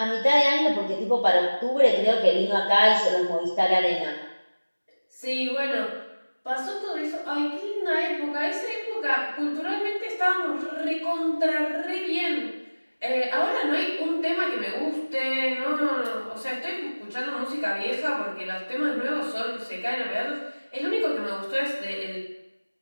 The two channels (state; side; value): inverted; both; correlation -1.00